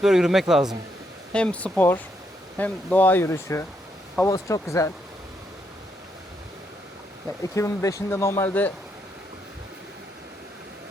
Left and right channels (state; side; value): normal; both; correlation 0.77